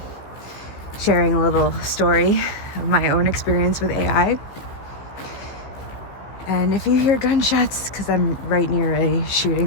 sharing a little story of my own experience with AI. And if you hear gunshots, because I'm right near a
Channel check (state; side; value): late; right; 15 ms